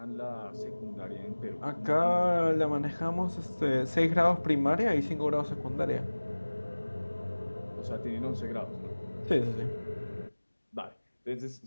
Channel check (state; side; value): inverted; both; correlation -1.00